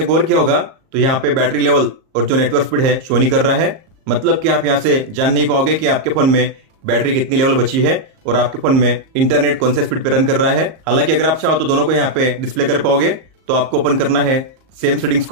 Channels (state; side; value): late; left; 38 ms